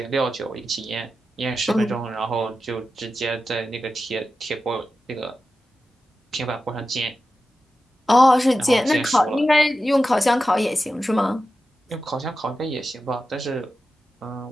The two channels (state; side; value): normal; both; correlation 0.92